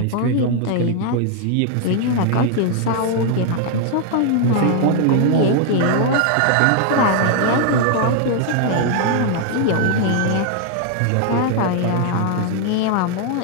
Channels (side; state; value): both; different; correlation 0.00